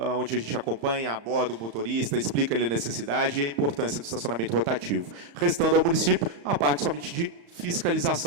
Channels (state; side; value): late; left; 35 ms